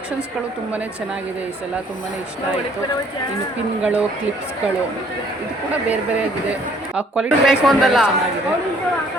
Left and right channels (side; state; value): both; normal; correlation 0.60